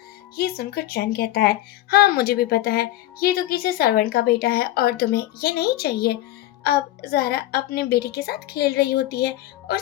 ये सुनकर चैन कहता है हाँ मुझे भी पता है, ये तो किसी सर्वेंट का बेटा है और तुम्हें ये नहीं चाहिए। अब जारा अपने बेटे के साथ खेल रही होती है और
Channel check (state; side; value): quieter; right; 15.1 dB